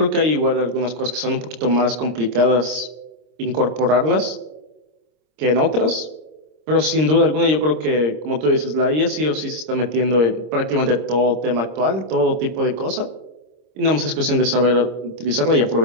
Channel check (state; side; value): late; left; 26 ms